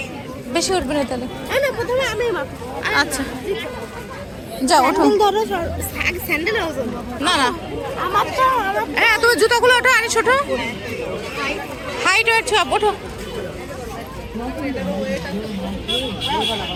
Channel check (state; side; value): identical; both; correlation 1.00